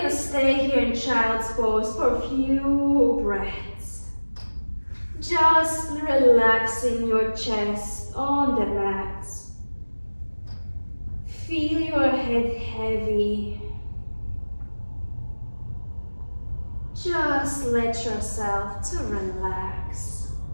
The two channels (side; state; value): both; inverted; correlation -1.00